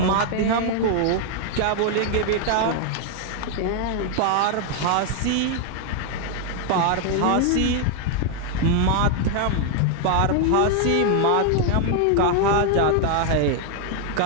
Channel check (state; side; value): different; both; correlation 0.00